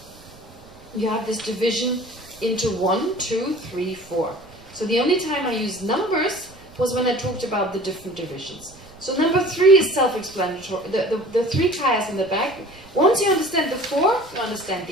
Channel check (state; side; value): noise; right; rumble, 23 dB below the sound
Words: you have this division into 1, 2, 3, 4. So the only time I used numbers was when I talked about the different divisions. So number 3 is self-explanatory. The 3 kayas in the back. Once you understand the 4, you understand